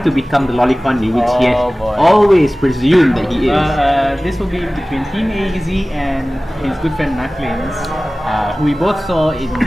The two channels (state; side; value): normal; both; correlation 0.98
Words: to become the Lolicon, which he has Oh, boy. always presumed that he is. This will be between Team AEZ and his good friend Knucklins, who we both saw in